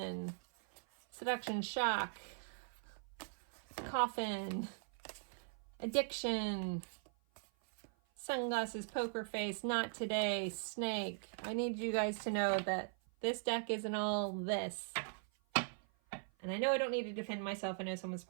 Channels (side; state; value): left; silent; 51 dB below the other